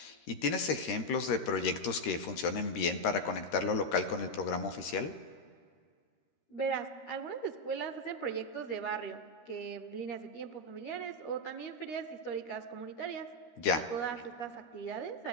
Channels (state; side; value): late; right; 13 ms